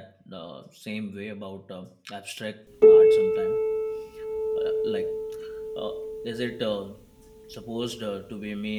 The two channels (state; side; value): identical; both; correlation 1.00